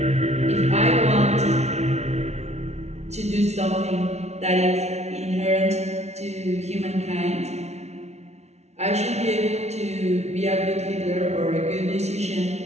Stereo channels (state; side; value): late; left; 0.32 ms